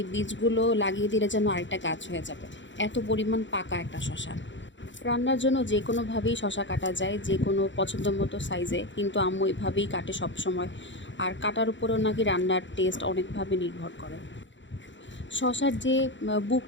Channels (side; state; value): right; late; 0.54 ms